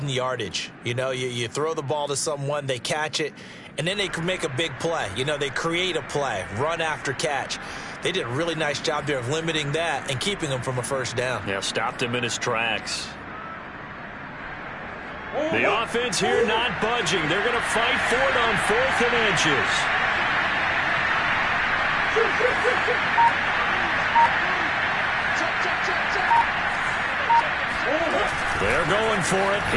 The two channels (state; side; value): identical; both; correlation 1.00